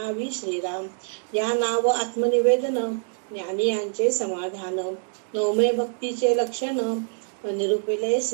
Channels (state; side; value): silent; left; digital silence